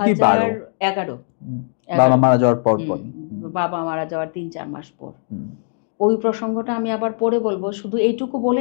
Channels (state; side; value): silent; right; digital silence